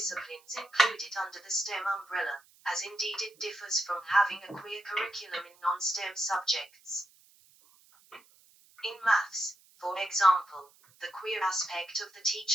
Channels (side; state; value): right; noise; hiss, 29 dB below the sound